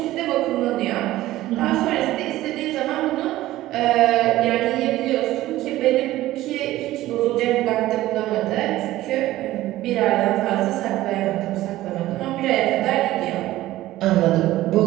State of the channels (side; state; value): left; quieter; 15.8 dB